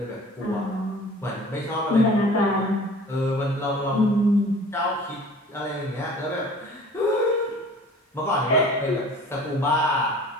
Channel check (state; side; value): normal; both; correlation 0.46